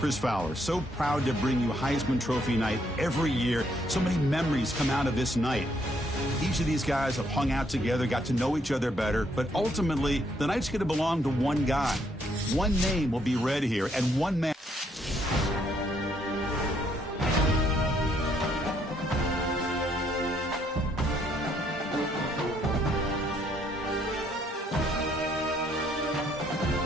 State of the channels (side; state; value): both; normal; correlation 0.71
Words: Fowler. So proud to bring you Heisman Trophy night every year. So many memories come out of this night. Each of these guys have hung out together, got to know each other better, but ultimately, the night's going to belong to one guy. One name will be read here, and one man.